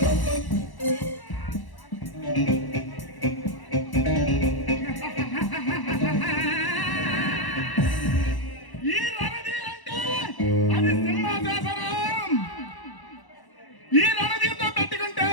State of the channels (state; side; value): late; right; 1.1 ms